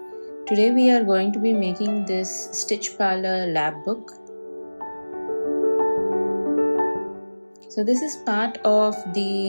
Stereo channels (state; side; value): inverted; both; correlation -1.00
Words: Today we are going to be making this Stitch Parlour lab book. So this is part of